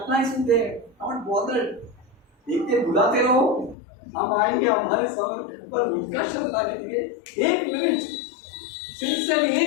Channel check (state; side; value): drops out; right; at 3.8 s